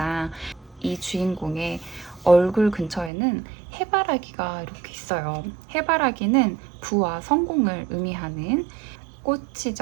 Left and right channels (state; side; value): drops out; left; at 3.1 s